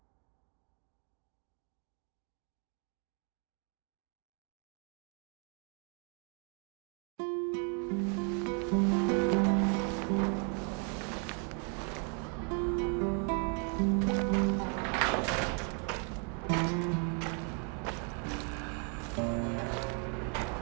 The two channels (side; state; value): left; quieter; 39.2 dB